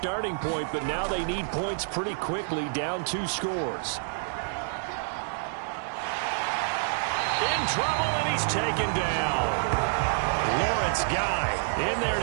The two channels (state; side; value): silent; left; digital silence